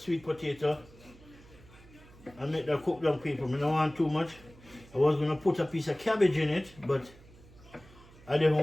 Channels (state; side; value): noise; right; hum, 23 dB below the sound